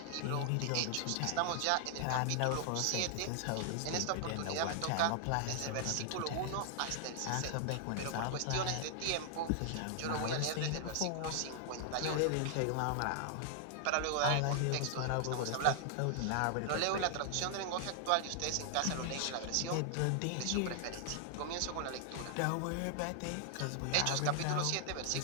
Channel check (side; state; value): both; different; correlation 0.00